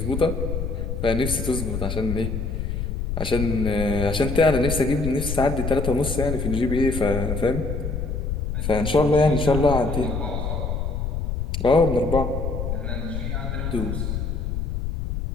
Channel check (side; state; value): left; noise; rumble, 2 dB below the sound